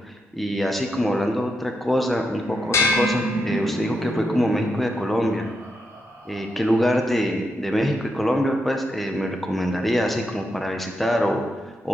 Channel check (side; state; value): both; normal; correlation 0.83